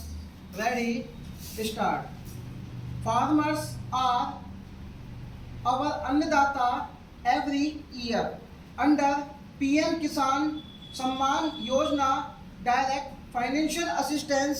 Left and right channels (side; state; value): both; identical; correlation 1.00